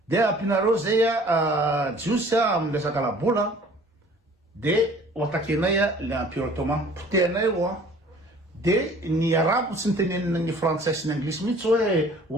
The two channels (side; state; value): both; normal; correlation 0.51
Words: de ampinareo zay Jiosy amin'ny resaka labola de oatakenay le empire ottoman potehanay de ny arabo tsy nitenenina ny frantsay sy ny anglisy mihitsy